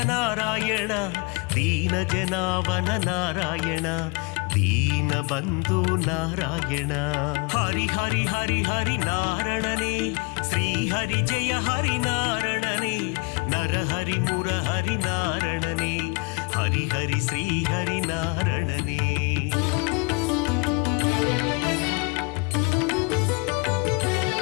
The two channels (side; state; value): right; quieter; 29.3 dB